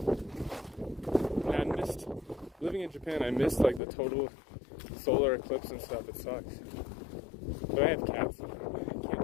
And I missed, living in Japan, I missed like the total solar eclipse and stuff. It sucks. But I have cats, so I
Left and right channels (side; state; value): right; drops out; at 3.8 s